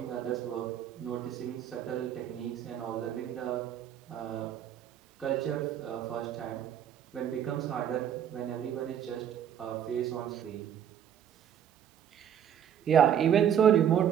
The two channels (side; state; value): left; quieter; 9.4 dB